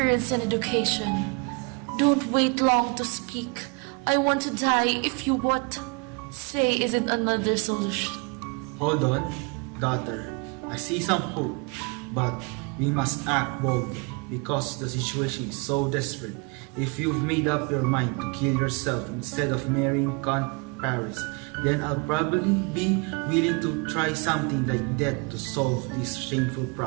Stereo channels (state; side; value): quieter; left; 31.9 dB